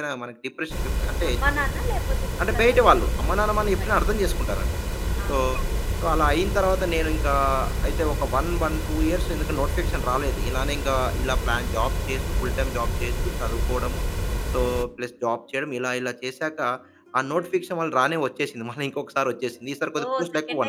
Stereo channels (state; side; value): identical; both; correlation 1.00